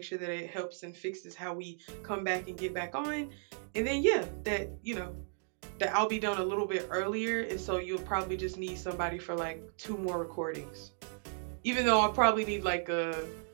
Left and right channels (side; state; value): left; silent; 55 dB below the other